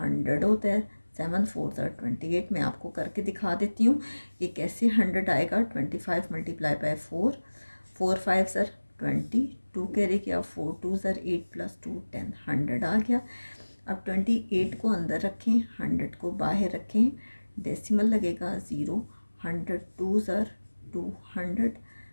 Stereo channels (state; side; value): inverted; both; correlation -1.00